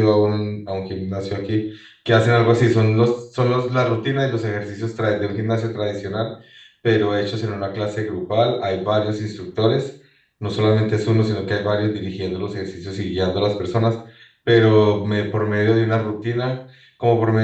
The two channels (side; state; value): both; identical; correlation 1.00